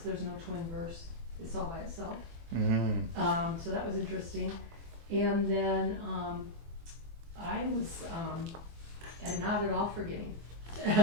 there's no twin verse. It's all by itself. So that was interesting. And then I was not at all forgetting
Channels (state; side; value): late; left; 24 ms